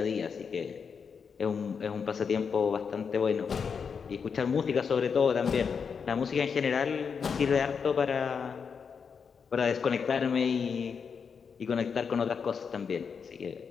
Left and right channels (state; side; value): quieter; right; 6.2 dB